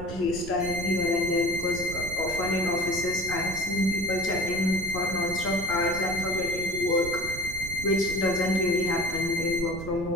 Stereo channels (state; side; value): noise; right; rumble, 10 dB below the sound